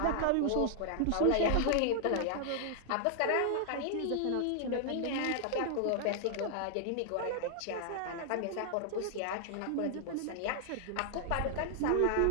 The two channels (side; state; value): both; different; correlation -0.01